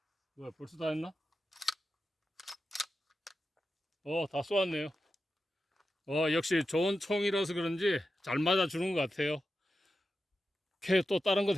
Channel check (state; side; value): normal; both; correlation 0.91